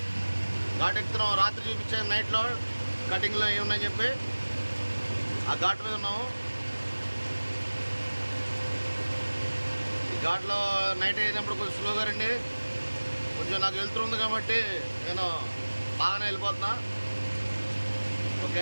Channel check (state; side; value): inverted; both; correlation -1.00